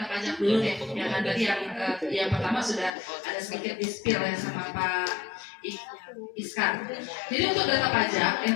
pajak dulu deh. Yang tadi yang pertama sudah ada sedikit di-spill ya sama Pak Iskar. Jadi untuk data pajak yang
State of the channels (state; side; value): drops out; right; at 2.9 s